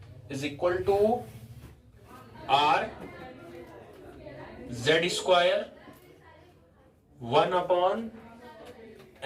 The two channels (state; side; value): identical; both; correlation 1.00